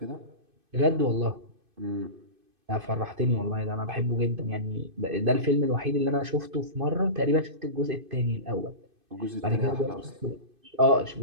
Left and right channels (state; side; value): late; left; 2.5 ms